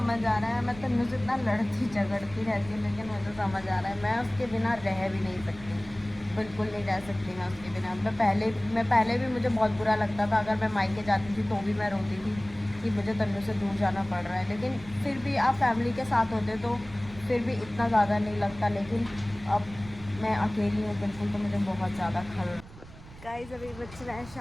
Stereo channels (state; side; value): noise; right; rumble, 18 dB below the sound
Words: आ रहा है मैं तन्नू से इतना लड़ती झगड़ती रहती हूँ, लेकिन मुझे समझ आ रहा है मैं उसके बिना रह भी नहीं सकती, बिल्कुल नहीं रह सकती मैं उसके बिना। मैं पहले भी मुझे बहुत बुरा लगता था, अगर मैं मायके जाती थी तो भी मैं रोती थी कि मुझे तन्नू से दूर जाना पड़ रहा है। लेकिन फिर भी आप फैमिली के साथ होते तो फिर भी इतना ज़्यादा नहीं लगता, लेकिन अब मैं अकेली हूँ बिल्कुल, तो मुझे बहुत ज़्यादा खल। गाइस अभी बज रहा है